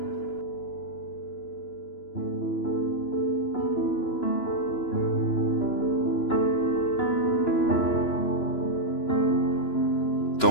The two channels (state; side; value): late; right; 3.0 ms